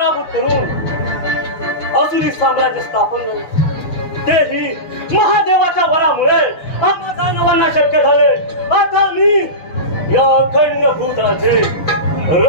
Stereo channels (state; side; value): late; right; 6.0 ms